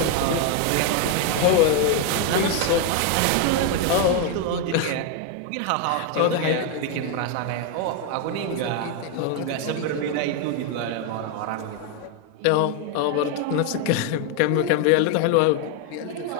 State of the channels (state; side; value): different; both; correlation 0.01